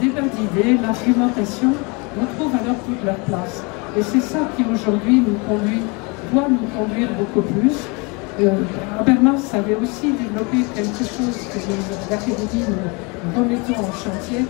débat d'idées, l'argumentation, retrouvent alors toute leur place. Et c'est ça qui aujourd'hui nous conduit doit nous conduire beaucoup plus. Habermas avait aussi développé quelque chose que l'Académie nous remettons en chantier,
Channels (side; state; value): right; quieter; 29.6 dB